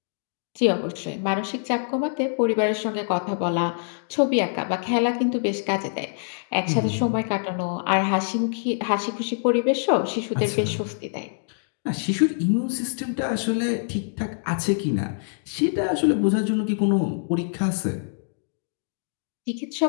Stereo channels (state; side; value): silent; right; digital silence